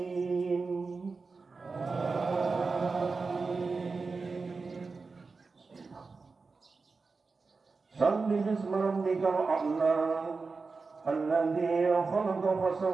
Sabbi bismi rabbikal a'la, alladzi khalaqa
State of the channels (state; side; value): quieter; left; 4.3 dB